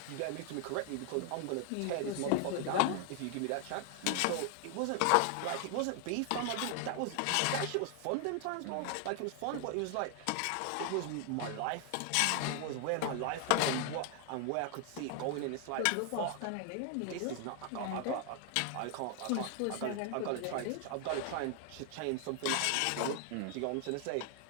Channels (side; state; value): both; different; correlation 0.00